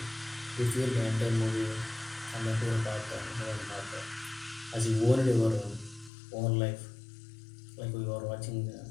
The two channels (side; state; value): right; drops out; at 6.1 s